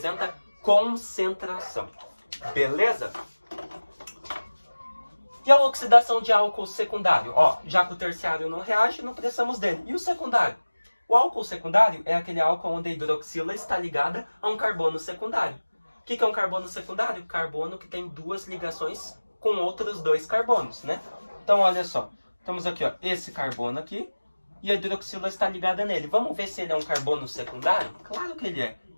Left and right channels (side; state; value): both; inverted; correlation -1.00